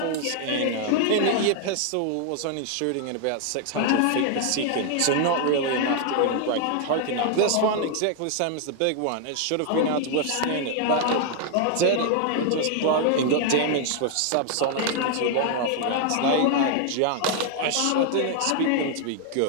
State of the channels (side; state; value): both; different; correlation 0.00